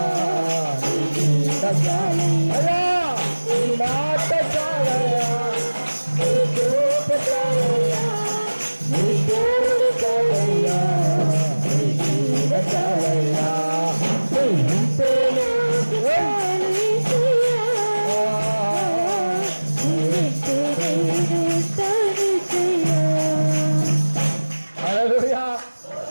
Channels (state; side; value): inverted; both; correlation -1.00